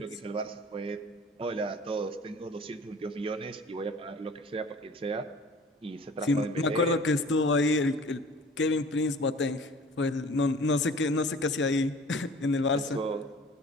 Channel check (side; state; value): both; normal; correlation 0.46